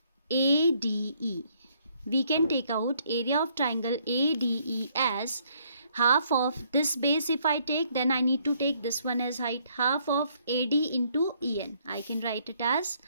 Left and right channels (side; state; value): both; inverted; correlation -0.68